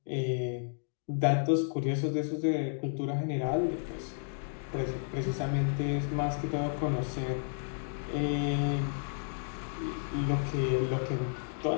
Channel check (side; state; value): right; silent; digital silence